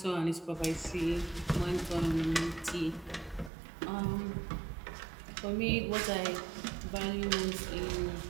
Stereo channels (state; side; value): drops out; left; at 3.5 s